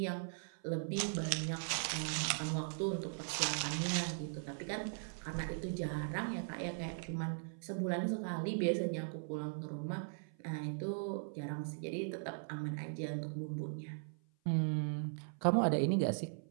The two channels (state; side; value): silent; left; 52 dB below the other